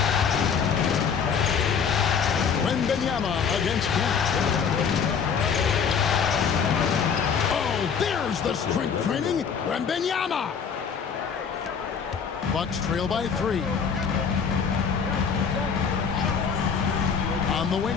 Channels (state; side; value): quieter; right; 6.6 dB